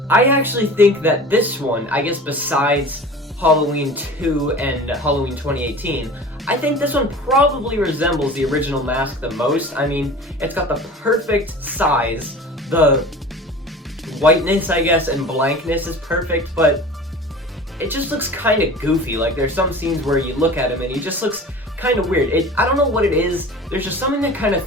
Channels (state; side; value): normal; both; correlation 0.38